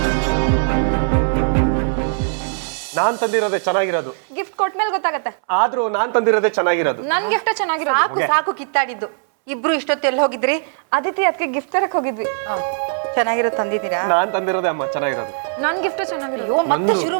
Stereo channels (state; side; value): silent; left; 66 dB below the other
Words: ನಾನ್ ತಂದಿರೋದೇ ಚೆನ್ನಾಗಿರೋದು. ಗಿಫ್ಟ್ ಕೊಟ್ಮೇಲೆ ಗೊತ್ತಾಗತ್ತೆ. ಆದ್ರೂ ನಾನ್ ತಂದಿರೋದೇ ಚೆನ್ನಾಗಿರೋದು. ನನ್ ಗಿಫ್ಟ್ ಚೆನ್ನಾಗಿರೋದು. ಸಾಕು ಸಾಕು ಕಿತ್ತಾಡಿದ್ದು. ಇಬ್ರು ಇಷ್ಟೊತ್ತು ಎಲ್ಲಿ ಹೋಗಿದ್ರಿ? ಅದಿತಿ ಅದಕ್ಕೆ ಗಿಫ್ಟ್ ತರಕ್ ಹೋಗಿದ್ವಿ. ಚೆನ್ನಾಗಿರೋ ತಂದಿದ್ದೀರಾ? ನಾನ್ ತಂದಿರೋದೇ ಅಮ್ಮ ಚೆನ್ನಾಗಿರೋದು. ನನ್ ಗಿಫ್ಟ್ ಚೆನ್ನಾಗಿರೋದು. ಅಯ್ಯೋ, ಮತ್ತೆ ಶುರು